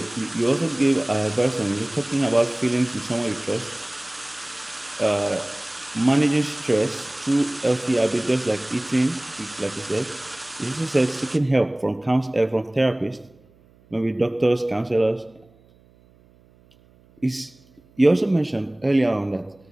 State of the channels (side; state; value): right; noise; hum, 30 dB below the sound